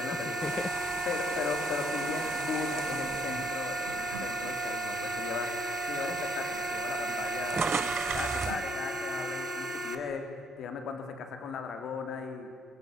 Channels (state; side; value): normal; both; correlation 0.67